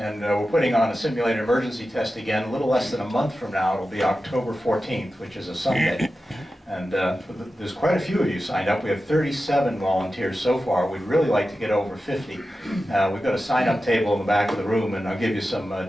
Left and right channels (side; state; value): both; normal; correlation 0.93